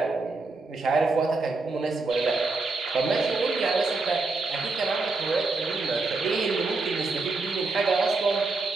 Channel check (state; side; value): quieter; left; 3.6 dB